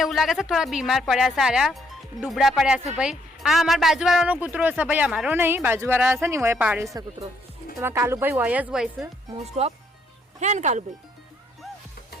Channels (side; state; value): both; normal; correlation 0.70